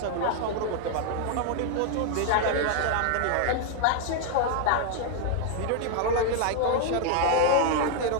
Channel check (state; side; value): different; both; correlation 0.00